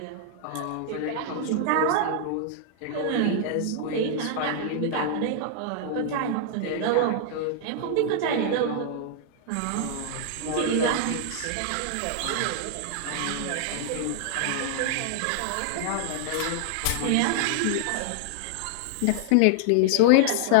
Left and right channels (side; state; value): both; different; correlation 0.00